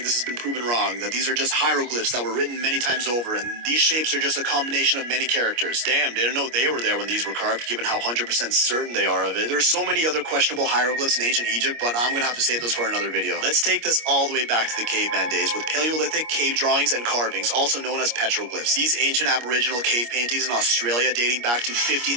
this has been proven wrong, that these are just hieroglyphs that were written many times over, and these shapes are just a combination of many characters. Damn, didn't know they were there when these were carved, given how 100% certain they are of it. There's so many other questionable hieroglyphs in ancient Egypt, but I'm gonna have to save those for another video. Let's take this all the way back to the caveman days with Paleolithic cave drawings and carvings, also known as petroglyphs. These ancient aboriginal cave paintings in Australia dating back to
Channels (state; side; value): late; left; 25 ms